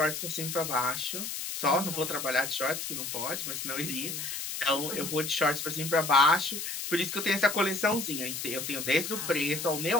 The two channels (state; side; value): noise; left; hiss, 5 dB below the sound